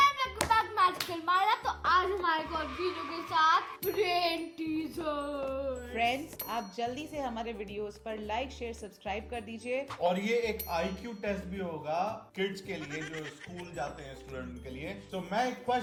welcome back magical Myra. तो आज हमारे को वीडियो के साथ ब्रेन टीजर. फ्रेंड्स, आप जल्दी से हमारे वीडियोस पर लाइक, शेयर, सब्सक्राइब कर दीजिए. और ये एक IQ टेस्ट भी होगा किड्स के लिए जो स्कूल जाते हैं स्टूडेंट के लिए. तो मैं एक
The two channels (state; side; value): identical; both; correlation 1.00